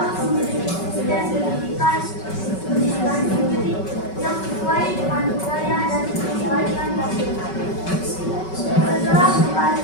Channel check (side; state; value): right; late; 5.3 ms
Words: memiliki sistem pendidikan sendiri yang sesuai dengan budaya dan kebaikan nasional. Setelah kembali